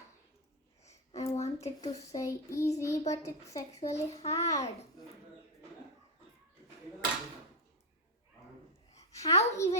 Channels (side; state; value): both; normal; correlation 0.03